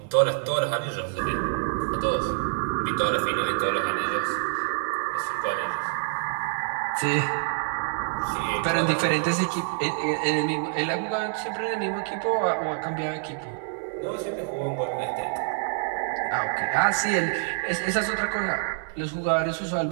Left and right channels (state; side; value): silent; left; digital silence